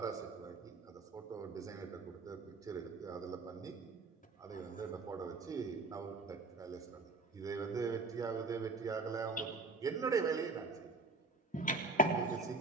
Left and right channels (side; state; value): left; quieter; 3.5 dB